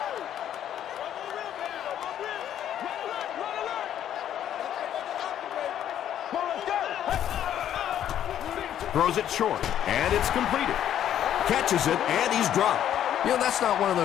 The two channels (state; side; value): quieter; right; 10.6 dB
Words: Throws it short, and it's completed. Catches it, and he's dropped. You know, that's not one of